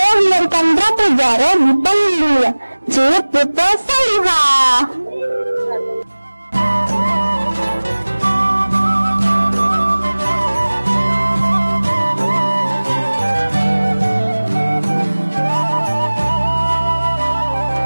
melarikan Ratu Zaro di panggung dunia, Ciputra Salihah.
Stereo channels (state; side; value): inverted; both; correlation -1.00